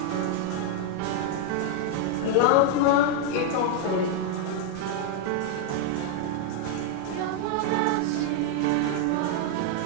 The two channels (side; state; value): both; different; correlation 0.00